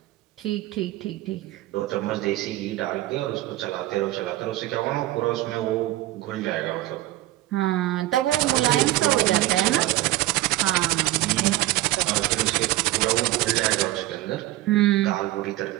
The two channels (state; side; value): quieter; left; 16.8 dB